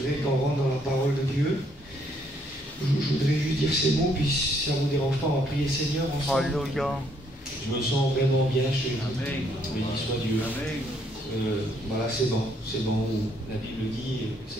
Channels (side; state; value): both; normal; correlation 0.69